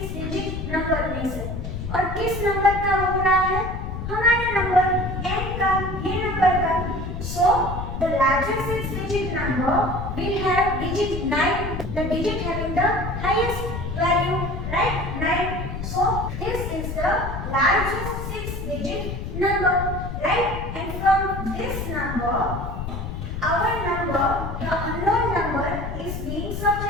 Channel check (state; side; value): noise; left; rumble, 5 dB below the sound